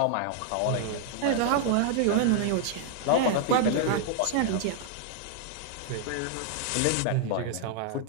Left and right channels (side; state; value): both; different; correlation 0.00